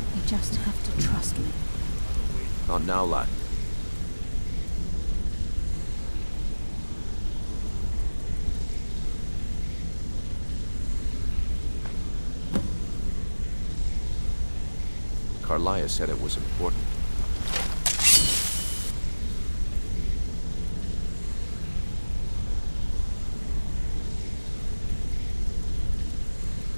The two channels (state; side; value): inverted; both; correlation -1.00